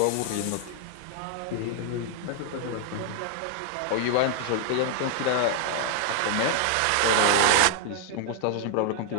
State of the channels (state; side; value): different; both; correlation 0.00